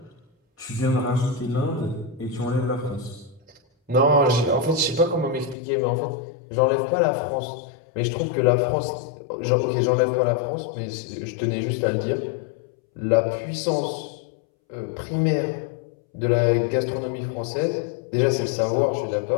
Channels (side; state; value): right; drops out; at 5.6 s